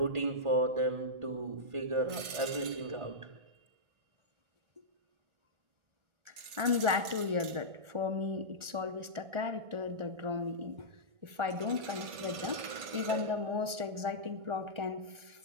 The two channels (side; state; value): left; late; 1.4 ms